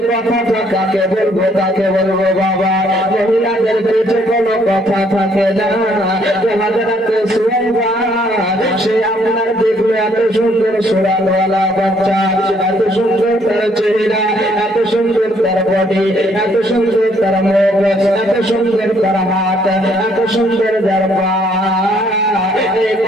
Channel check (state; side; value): normal; both; correlation 0.66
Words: কথাটা কাকে বলবো কাকে বলবো বাবা, মহিলাদের পেটে কোনো কথা থাকে না। হযরত সুয়াইবা সে আপনার দেখলো এত সুন্দর সুরানওয়ালা বাচ্চা, এত সুন্দর তার চেহারা, এত সুন্দর তার বডি, এত সুন্দর তার মুখ, এত সুন্দর তার হাত, এত সুন্দর তার পা, এই